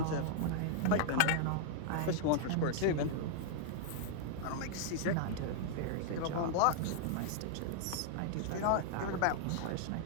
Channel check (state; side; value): different; both; correlation -0.01